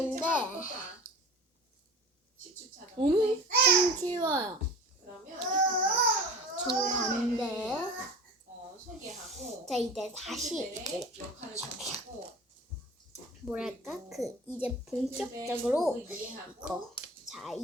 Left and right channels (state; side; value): normal; both; correlation 0.37